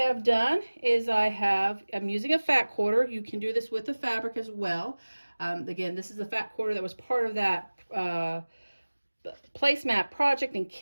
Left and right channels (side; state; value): both; inverted; correlation -1.00